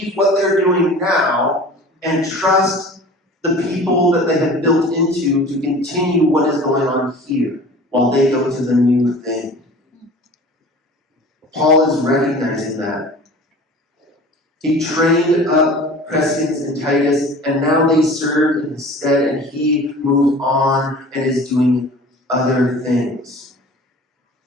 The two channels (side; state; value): both; normal; correlation 0.42